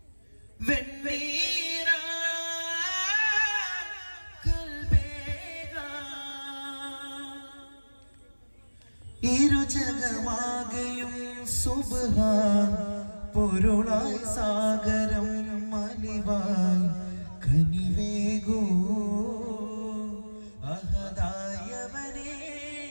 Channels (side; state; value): both; inverted; correlation -1.00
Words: വെണ്ണീരാ കൽബേഗാ ഇരുജഗമാകെയും സുബ്ഹാൻ പൊരുളായി സാഗരം മലിവായി കനിവേകൂ അഹദായവനേ